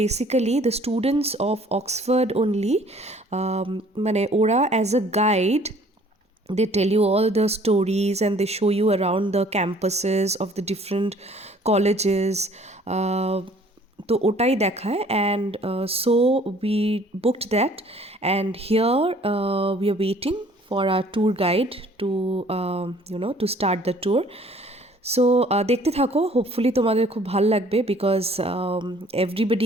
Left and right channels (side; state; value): both; normal; correlation 0.56